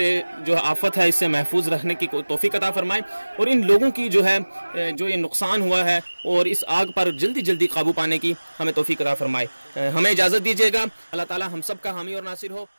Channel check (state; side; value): inverted; both; correlation -1.00